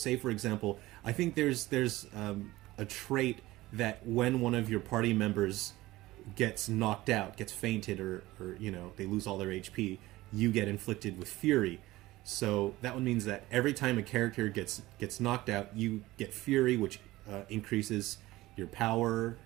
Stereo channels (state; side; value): quieter; left; 18.1 dB